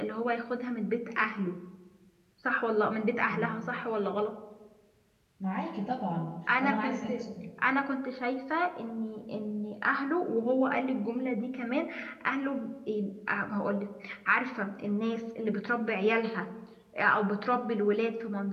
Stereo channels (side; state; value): both; identical; correlation 1.00